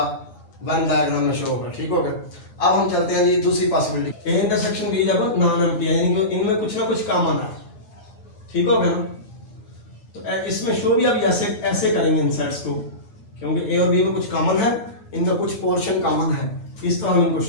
वन डायग्राम में शो होगा, ठीक होगा। अब हम चलते हैं जी दूसरी पॉसिबिलिटी, ए इंटरसेक्शन बी जब नॉन एम्प्टी है, यानी कि इनमें कुछ ना कुछ कॉमन है, ठीक होगा ना। तो इसमें शो भी अब ऐसे करेंगे इन सेट्स को, क्योंकि ए और बी में कुछ कॉमन है, इनका कुछ पोर्शन कॉमन है, इस तरह हम इनको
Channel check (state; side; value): late; right; 9.9 ms